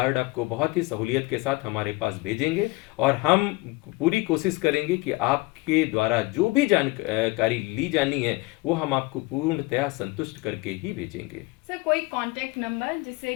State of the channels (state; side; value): quieter; right; 23.3 dB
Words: आपको बहुत ही सहूलियत के साथ हमारे पास भेजेंगे और हम पूरी कोशिश करेंगे कि आपके द्वारा जो भी जानकारी ली जानी है वो हम आपको पूर्णतया संतुष्ट करके ही भेजेंगे। सर कोई कांटेक्ट नंबर जिससे